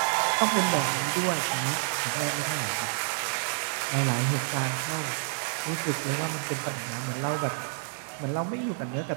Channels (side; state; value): left; silent; 59 dB below the other